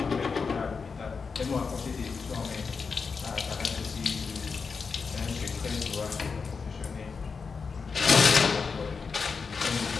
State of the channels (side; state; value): right; quieter; 5.2 dB